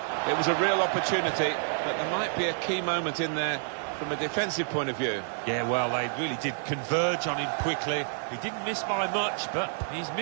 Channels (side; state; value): left; silent; 59 dB below the other